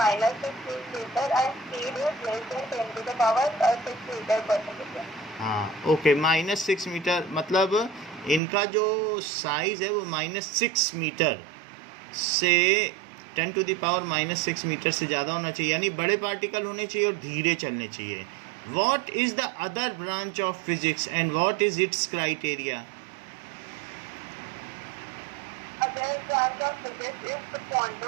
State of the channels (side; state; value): left; drops out; at 8.4 s